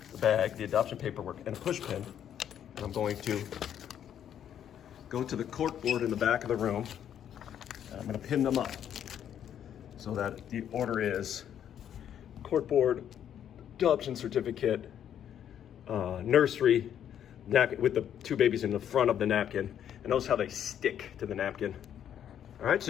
the adoption paperwork, and a push pin. And I'm going to go to the cork board in the back of the room. And I'm going to pin them up so that the order is cork board, adoption certificate, nursery, napkin with the two babies in the front of the napkin. And notice how they stick to the napkin. All right,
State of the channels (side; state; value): right; quieter; 9.6 dB